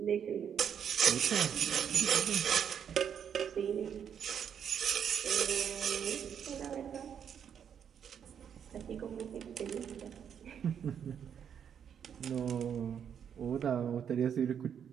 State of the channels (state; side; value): quieter; left; 8.2 dB